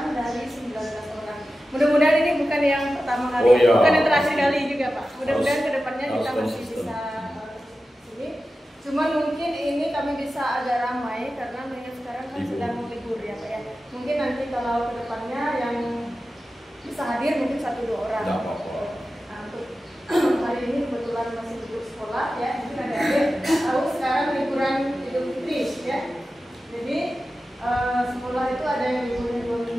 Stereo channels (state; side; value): normal; both; correlation 0.93